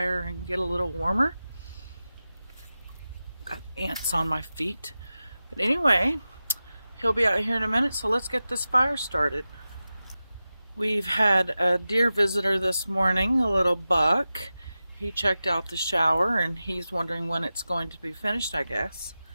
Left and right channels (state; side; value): inverted; both; correlation -0.94